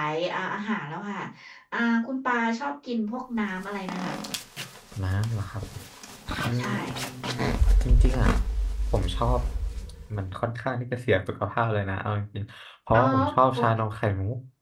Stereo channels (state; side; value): identical; both; correlation 1.00